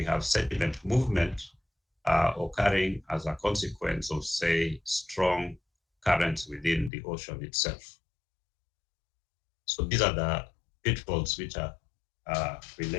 have sediment movement occurring as a consequence of, say, strong currents within the ocean itself. So these are the pitfalls which are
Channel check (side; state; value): right; drops out; at 6.9 s